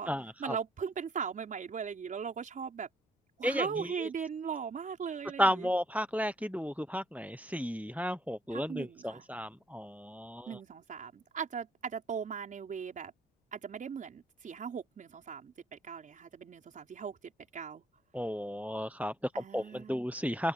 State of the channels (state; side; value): normal; both; correlation 0.67